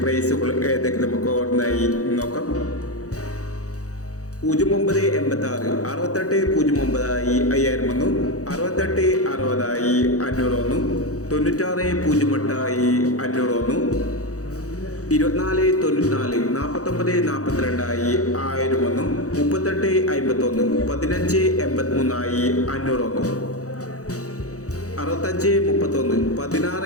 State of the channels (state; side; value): late; right; 0.66 ms